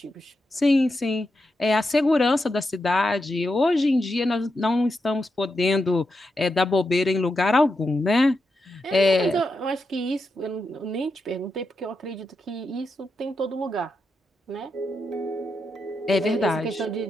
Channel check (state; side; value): normal; both; correlation 0.86